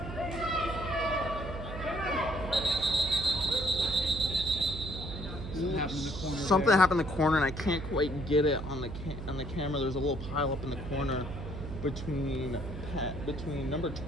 Something happened in the corner, and I can't quite get it on the camera. There's a little pile up in the corner between number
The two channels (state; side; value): noise; right; hum, 8 dB below the sound